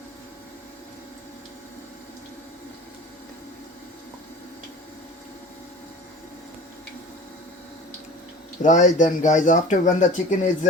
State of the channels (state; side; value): normal; both; correlation 0.39